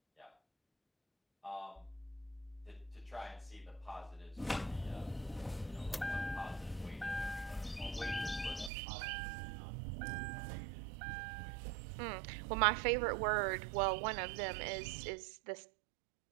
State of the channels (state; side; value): drops out; left; at 8.7 s